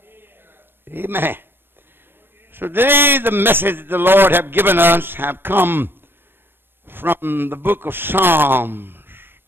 Amen. So today the message the Lord have given us have come from the book of Psalms.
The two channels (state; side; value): late; left; 0.10 ms